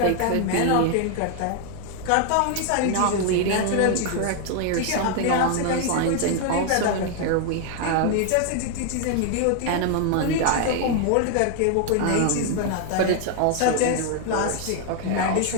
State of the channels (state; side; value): different; both; correlation 0.00